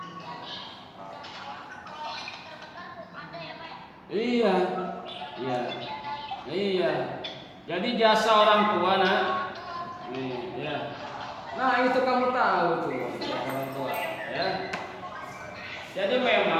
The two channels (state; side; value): identical; both; correlation 1.00